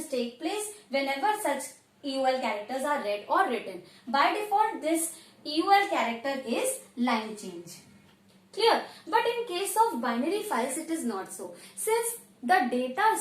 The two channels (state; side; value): identical; both; correlation 1.00